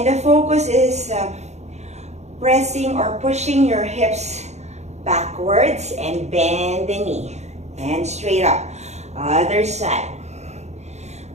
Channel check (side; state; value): left; late; 0.32 ms